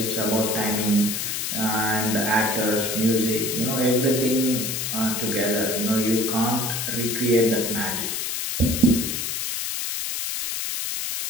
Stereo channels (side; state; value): left; noise; hiss, 2 dB below the sound